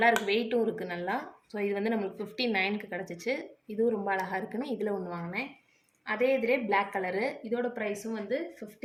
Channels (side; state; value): both; identical; correlation 1.00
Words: இருக்குது, வெயிட்டும் இருக்குது நல்லா. ஸோ இது வந்து நம்மளுக்கு 59க்கு கிடச்சிச்சு. இதுவும் ரொம்ப அழகாக இருக்குன்னு இதில் ஒன்று வாங்கினேன். அதே இதிலே பிளாக் கலரு, இதோட ப்ரைஸும் வந்து